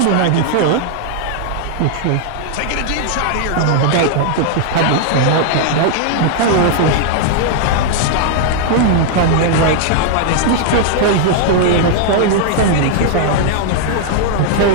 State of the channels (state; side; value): different; both; correlation 0.00